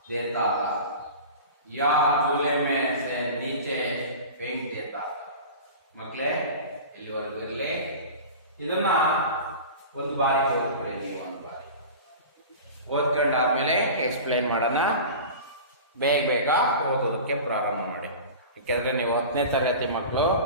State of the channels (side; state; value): both; inverted; correlation -0.34